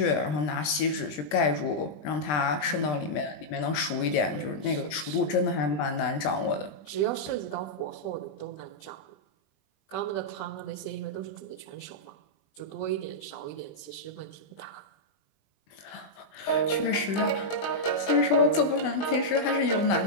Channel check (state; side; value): late; right; 20 ms